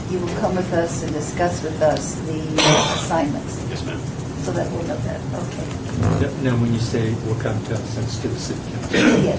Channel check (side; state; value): both; identical; correlation 1.00